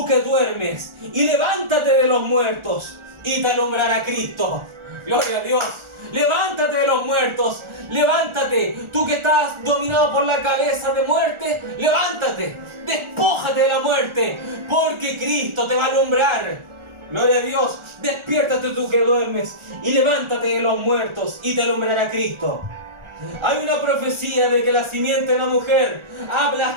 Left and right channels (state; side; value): late; left; 1.4 ms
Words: que duermes, y levántate de los muertos, y te alumbrará Cristo. Gloria a Dios. Levántate de los muertos, levántate, tú que estás dominado por la cabeza de muerte, levántate, despójate de la muerte, porque Cristo te va a alumbrar. Gloria a Dios, despiértate tú que duermes y levántate de los muertos y te alumbrará Cristo. Hay una profecía de que la simiente de la mujer